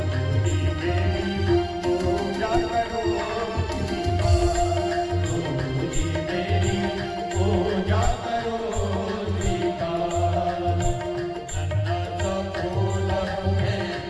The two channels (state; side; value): identical; both; correlation 1.00